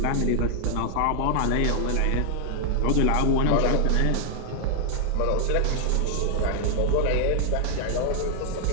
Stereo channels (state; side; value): different; both; correlation 0.00